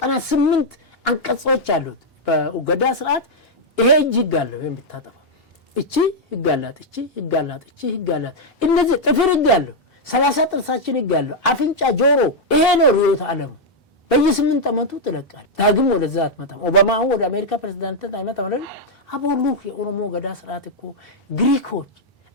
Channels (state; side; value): normal; both; correlation -0.02